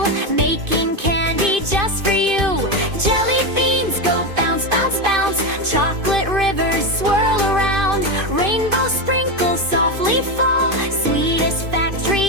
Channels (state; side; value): late; left; 2.5 ms